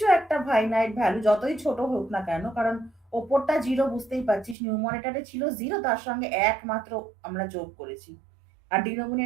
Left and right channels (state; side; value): drops out; left; at 4.5 s